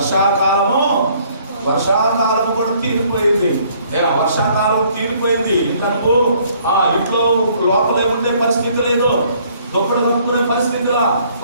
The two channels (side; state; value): both; inverted; correlation -0.62